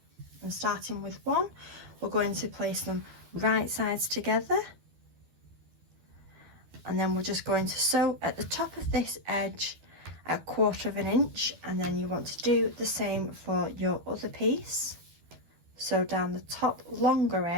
and starting with one, we're going to place them right sides together, and then we're just going to sew at the top of this edge at 1/4 inch, and then you want to do the same for your other piece. Sew down the top longer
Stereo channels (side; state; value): left; late; 12 ms